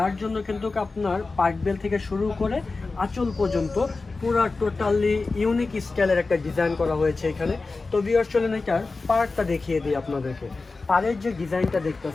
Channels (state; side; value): quieter; right; 3.8 dB